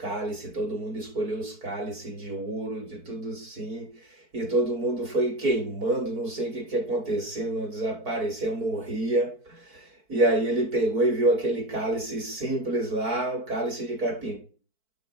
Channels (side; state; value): left; late; 4.5 ms